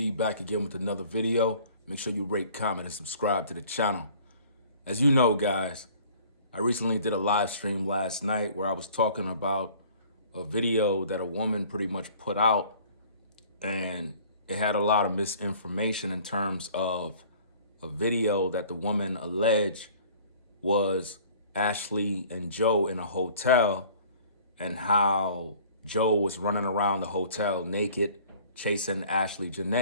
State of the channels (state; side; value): inverted; both; correlation -0.51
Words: back again with another video. Make sure you rate, comment, and subscribe to the channel. As you know, guys, I recently did a live stream last night where I was talking about a video that a woman pretty much put out, and it had a lot of misinformation in terms of a video that the woman alleged was Ashlee and Joe in a hotel, and how Joe was running around the hotel naked, chasing Ashlee